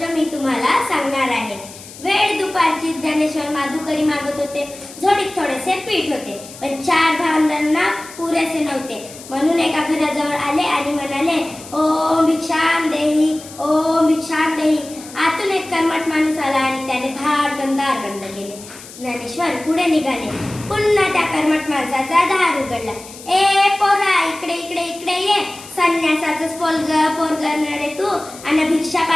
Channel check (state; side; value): noise; left; hiss, 17 dB below the sound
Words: मी तुम्हाला सांगणार आहे. वेळ दुपारची ज्ञानेश्वर माधुकरी मागत होते. झोडीत थोडेसे पीठ होते, पण 4 भावंडांना पुरेसे नव्हते. म्हणून एका घराजवळ आले आणि म्हणाले, ओम भिक्षाम देही, ओम भिक्षाम देही. आतून एक कर्मठ माणूस आला आणि त्याने धाडकन दार बंद केले. ज्ञानेश्वर पुढे निघाले. पुन्हा त्या कर्मठ माणसाचा दार उघडला. ए पोरा, इकडे इकडे इकडे ये. संन्यासाचंच पोरगं रे तू, आणि भिक्षा